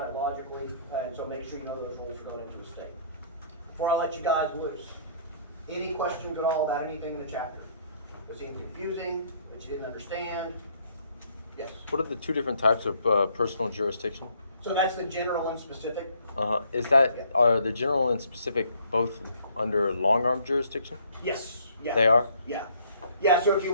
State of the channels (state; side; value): inverted; both; correlation -0.62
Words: it logically, and so make sure you know those rules are going into the state. Before I let you guys loose, any questions at all about anything in the chapter? Was it confusing, that you didn't understand? Yes? What are the two different types of personal jurisdiction? So that's the general and specific? Is that, are the general and specific both under long arm jurisdiction? Yes, yeah. They are? Yeah. Yeah, so if